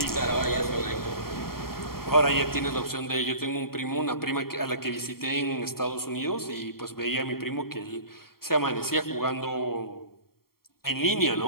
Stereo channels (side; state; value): right; late; 0.93 ms